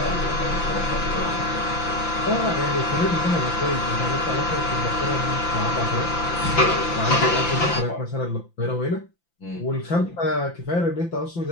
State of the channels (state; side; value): late; right; 5.9 ms